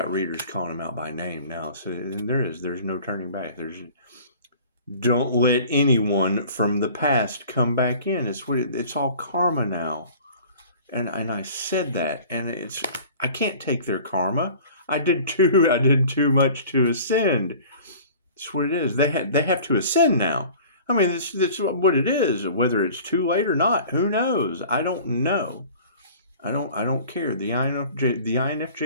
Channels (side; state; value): both; inverted; correlation -0.46